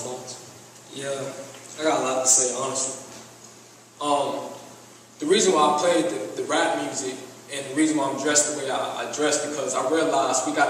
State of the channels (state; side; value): identical; both; correlation 1.00